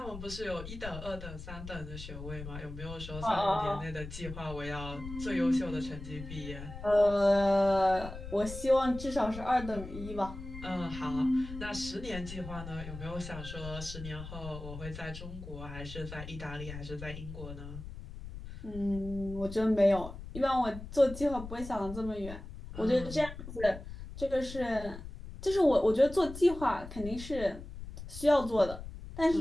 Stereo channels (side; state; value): left; noise; rumble, 11 dB below the sound